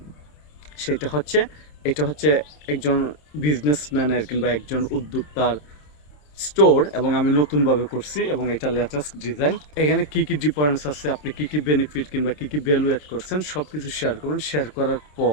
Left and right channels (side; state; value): right; late; 27 ms